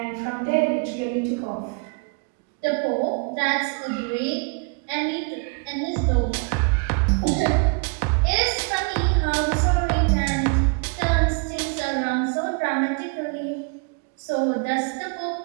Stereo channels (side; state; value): left; quieter; 35.4 dB